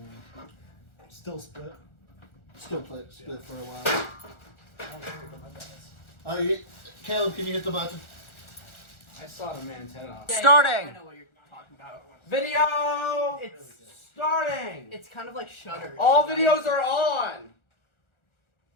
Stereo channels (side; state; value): right; late; 1.4 ms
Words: still split. Still split for a while. Oh, my dice. Caleb, can you hit the button? I saw the man's head off. Starting. I know what you're talking about. Video It's starting. it's kind of like Shutter. All videos are on.